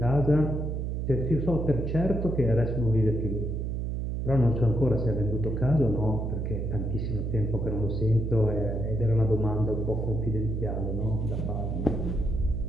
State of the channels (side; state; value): right; noise; hum, 2 dB below the sound